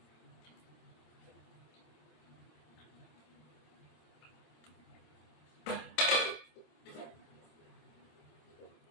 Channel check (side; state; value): right; late; 26 ms